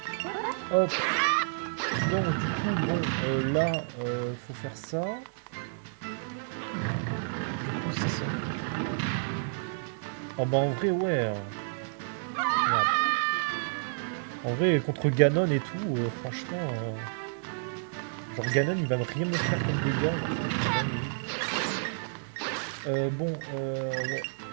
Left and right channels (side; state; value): left; silent; 58 dB below the other